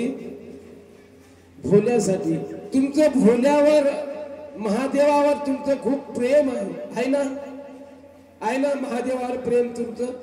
भोल्यासाठी. तुमचं भोल्यावर, महादेवावर तुमचं खूप प्रेम आहे ना? आहे ना महादेवावर प्रेम तुमचं,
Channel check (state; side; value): identical; both; correlation 1.00